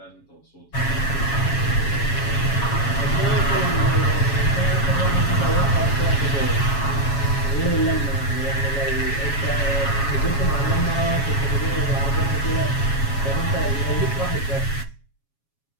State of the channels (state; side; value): late; right; 7.2 ms